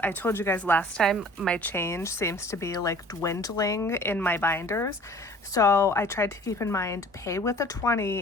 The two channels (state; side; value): normal; both; correlation 0.49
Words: I told you guys last time my change seems to be like dwindling in my binders. So I tried to keep in mind, pay with a